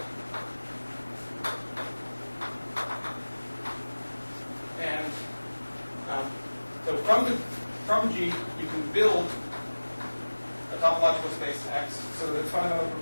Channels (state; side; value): inverted; both; correlation -1.00